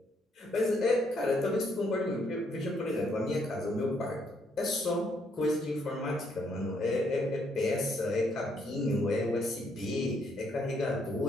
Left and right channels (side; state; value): both; normal; correlation 0.72